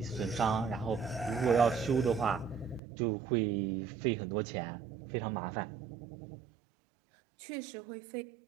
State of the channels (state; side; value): drops out; left; at 2.8 s